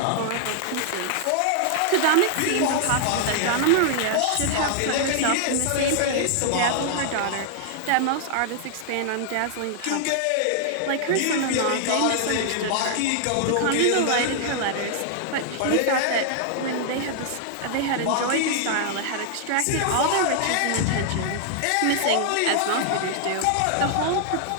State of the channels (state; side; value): different; both; correlation -0.01